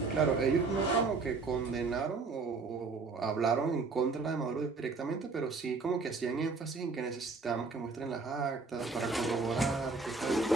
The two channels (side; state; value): left; quieter; 4.2 dB